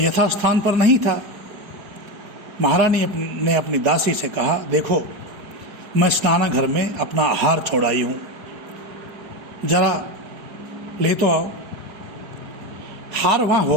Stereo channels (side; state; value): left; late; 4.5 ms